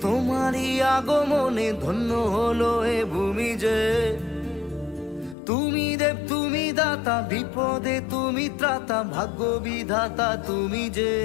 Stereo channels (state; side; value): drops out; right; at 5.4 s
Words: তোমারই আগমনে ধন্য হলো এ ভূমি যে। তুমি দেব তুমি দাতা, বিপদে তুমি ত্রাতা, ভাগ্য বিধাতা তুমি যে।